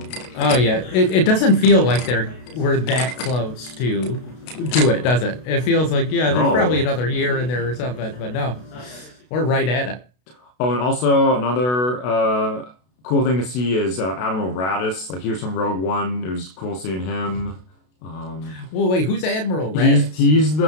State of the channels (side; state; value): right; late; 32 ms